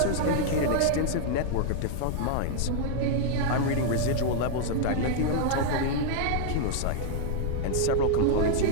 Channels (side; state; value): both; different; correlation -0.01